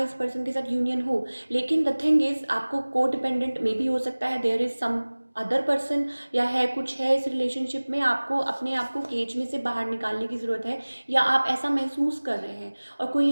पर्सन के साथ यूनियन हो, लेकिन द थिंग इज़ आपको को डिपेंडेंट मे बी हो सकता है, there is some other person, या है कुछ है इस रिलेशनशिप में, आपको अपने आप को केज में से बाहर निकालने की ज़रूरत है, या आप ऐसा महसूस कर रहे हैं और कोई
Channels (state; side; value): inverted; both; correlation -1.00